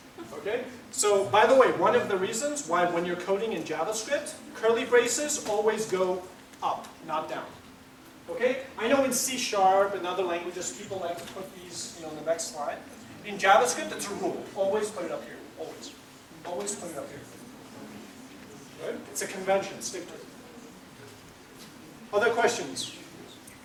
Okay? So, by the way, one of the reasons why when you're coding in JavaScript, curly braces always go up, not down. Okay? I know in C# and other languages, people like to put these in the next slide. In JavaScript, it's a rule. Always put it up here. Always. Always put it up here. Right? It's a convention. Stick to it. Other questions?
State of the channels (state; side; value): identical; both; correlation 1.00